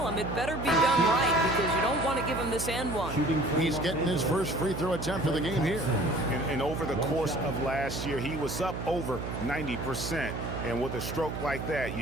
him, it better be done right because you don't want to give him this and one. He's getting his first free throw attempt of the game here. And over the course of last year, he was up over 90%. And with a stroke like that,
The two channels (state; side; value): noise; right; hum, 6 dB below the sound